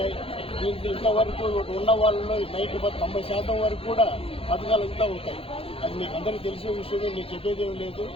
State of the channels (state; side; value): late; right; 0.27 ms